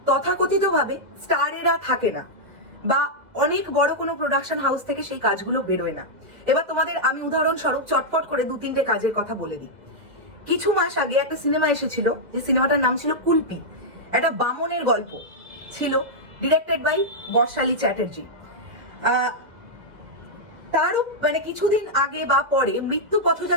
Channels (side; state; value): left; late; 2.0 ms